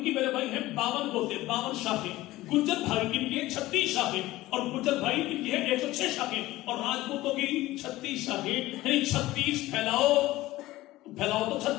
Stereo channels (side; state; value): right; quieter; 17.4 dB